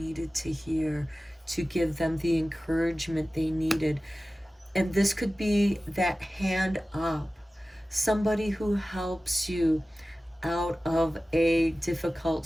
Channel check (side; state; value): both; normal; correlation 0.96